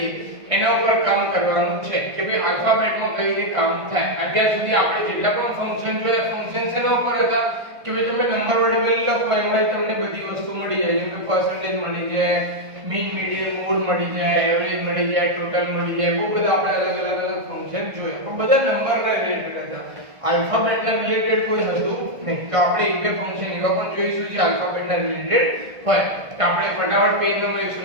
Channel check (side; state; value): left; late; 1.5 ms